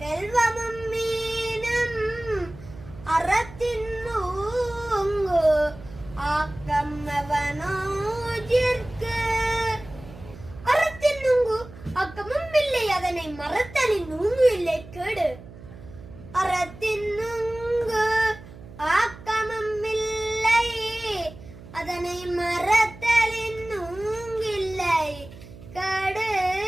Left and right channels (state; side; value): noise; right; hum, 17 dB below the sound